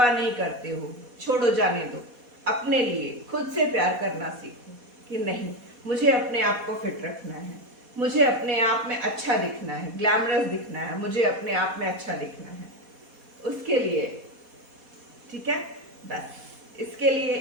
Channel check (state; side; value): late; left; 4.1 ms